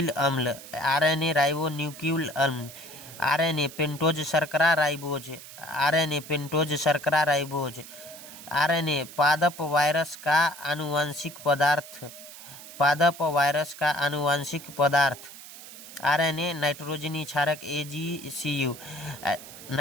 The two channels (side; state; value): right; noise; hiss, 15 dB below the sound